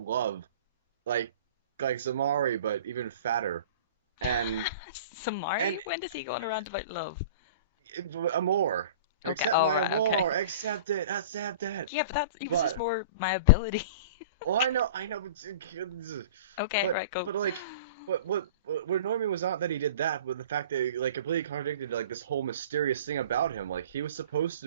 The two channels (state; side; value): inverted; both; correlation -0.40